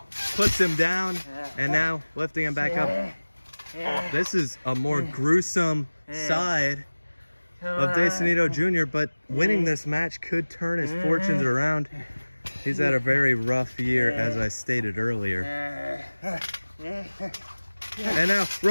puts him down, and now lifting him back up. This is a more gruesome side of Sonido Jr., but winning this match could turn his fortunes around. He's had a very rough year, as I stated earlier. And now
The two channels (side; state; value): both; inverted; correlation -1.00